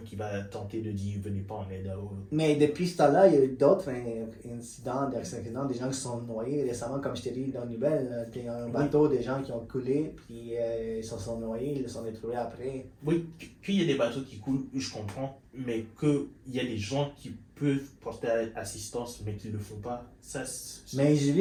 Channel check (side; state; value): both; identical; correlation 1.00